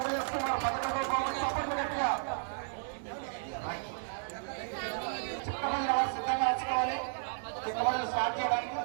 11వ బహుమతి సపోర్ట్ గట్టిగా. సిద్ధంగా వచ్చుకోవాలి. చిన్న స్టార్ట్ చేయడానికి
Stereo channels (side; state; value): left; silent; digital silence